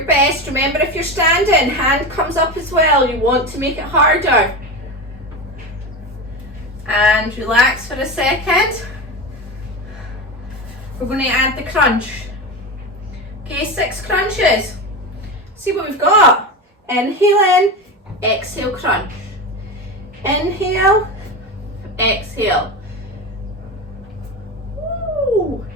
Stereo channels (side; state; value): both; normal; correlation 0.22